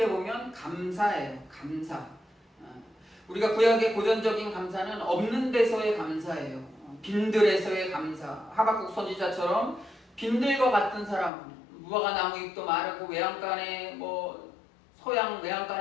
보면 감사예요. 감사. 우리가 구약의 고전적인 감사는 없는 데서의 감사예요. 빈들에서의 감사. 하박국 선지자처럼 빈들과 같은 사람, 무화과 나무 잎도 마르고 외양간에 뭐 소양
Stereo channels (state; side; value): drops out; right; at 11.3 s